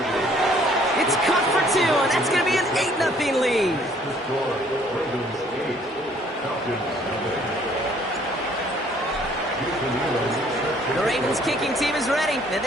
It's caught for two, and that's going to be an 8-0 lead. The Ravens kicking team is ready, and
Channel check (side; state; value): both; normal; correlation 0.60